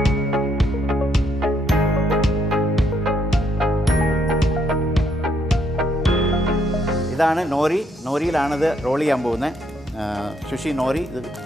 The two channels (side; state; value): both; normal; correlation 0.73